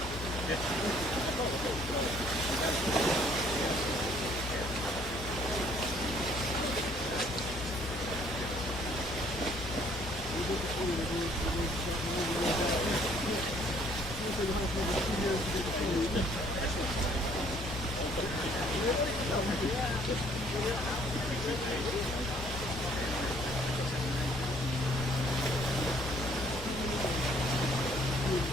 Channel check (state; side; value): normal; both; correlation 0.61